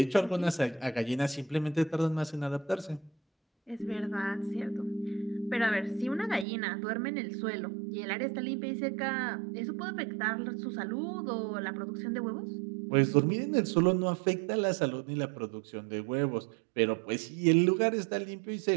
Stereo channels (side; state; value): left; drops out; at 6.5 s